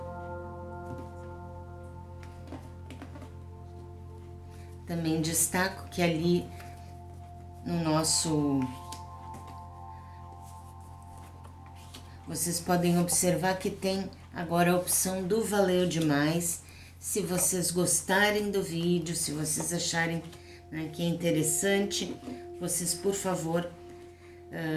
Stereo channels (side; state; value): both; identical; correlation 1.00